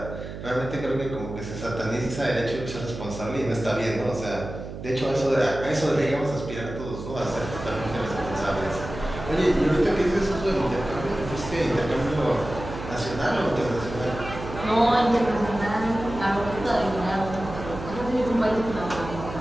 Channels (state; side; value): noise; right; hum, 10 dB below the sound